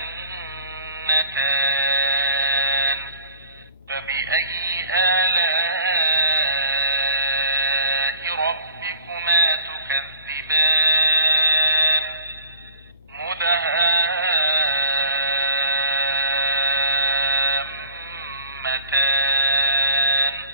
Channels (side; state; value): both; inverted; correlation -0.46